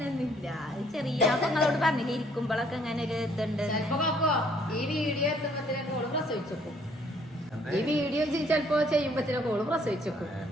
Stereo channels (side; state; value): both; normal; correlation 0.63